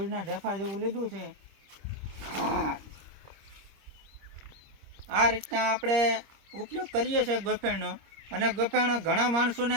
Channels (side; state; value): left; late; 26 ms